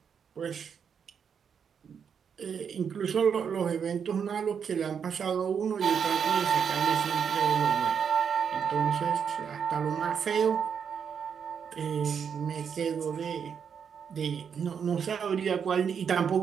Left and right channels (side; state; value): left; quieter; 7.1 dB